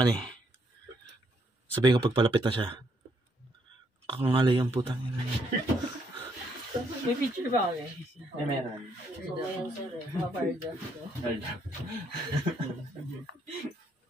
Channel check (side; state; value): both; normal; correlation 0.72